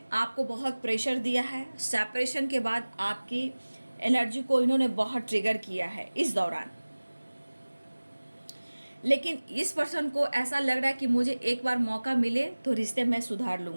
आपको बहुत प्रेशर दिया है। सेपरेशन के बाद आपकी एनर्जी को इन्होंने बहुत ट्रिगर किया है इस दौरान। लेकिन इस पर्सन को ऐसा लग रहा है कि मुझे एक बार मौका मिले तो रिश्ते में सुधार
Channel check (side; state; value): both; inverted; correlation -1.00